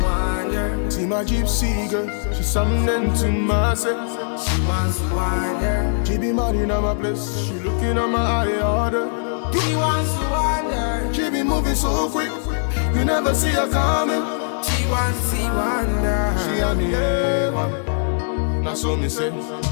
wander. See my gypsy girl, she's something to myself. She wants to wander. She be mad in my place, she looking at my eye order. She wants to wander. She be moving so quick, you never see her coming. She wants to see wander. She and me now so me say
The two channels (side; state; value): right; silent; digital silence